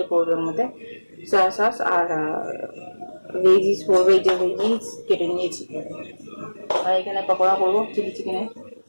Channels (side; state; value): both; inverted; correlation -1.00